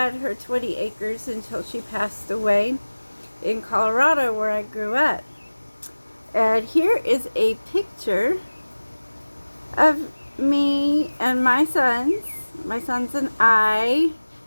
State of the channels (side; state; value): both; inverted; correlation -1.00